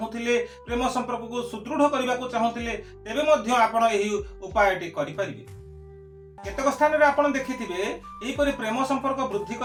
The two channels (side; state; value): both; identical; correlation 1.00